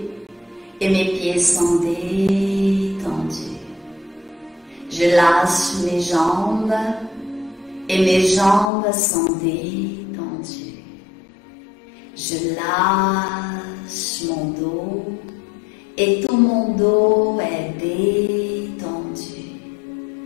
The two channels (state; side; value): drops out; right; at 8.7 s